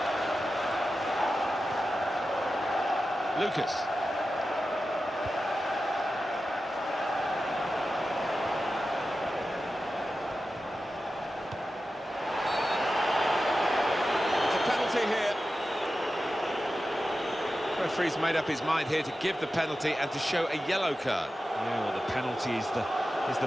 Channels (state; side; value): normal; both; correlation 0.93